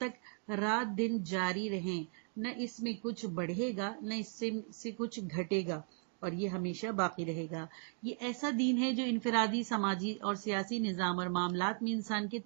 رات دن جاری رہیں نہ اس میں کچھ بڑھے گا نہ اس سے کچھ گھٹے گا، اور یہ ہمیشہ باقی رہے گا۔ یہ ایسا دین ہے جو انفرادی، سماجی اور سیاسی نظام اور معاملات میں انسان کی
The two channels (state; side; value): silent; left; 53 dB below the other